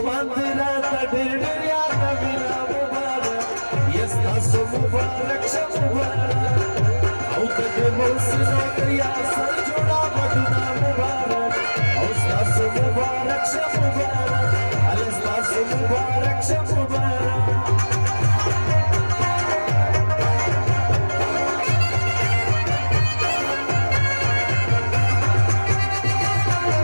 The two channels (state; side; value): inverted; both; correlation -1.00